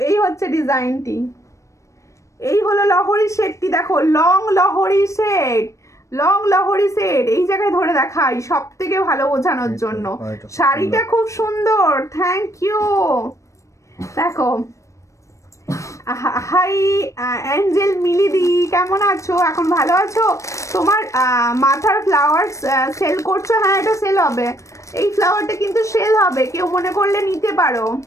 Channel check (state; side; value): late; right; 0.15 ms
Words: এই হচ্ছে ডিজাইনটি, এই হলো লহরি সেটটি, দেখো লং লহরি সেট, লং লহরি সেট, এই জায়গায় ধরে দেখাই সব থেকে ভালো বোঝানোর জন্য। শাড়িটা খুব সুন্দর, থ্যাংক ইউ। দেখো, হাই অ্যাঞ্জেল মিলিদি, কেমন আছো? এখন ভালো আছো? তোমার মাথার ফ্লাওয়ার সেল করছো? হ্যাঁ, এটা সেল হবে, এই ফ্লাওয়ারটা কিন্তু সেল হবে, কেউ মনে করলে নিতে পারো,